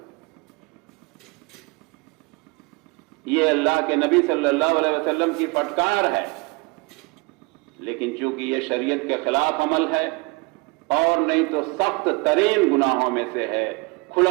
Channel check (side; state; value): left; quieter; 26.7 dB